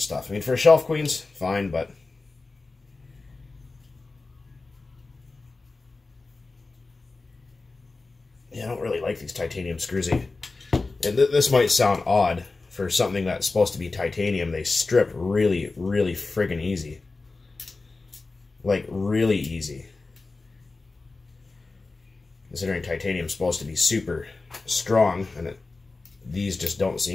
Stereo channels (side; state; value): right; quieter; 3.6 dB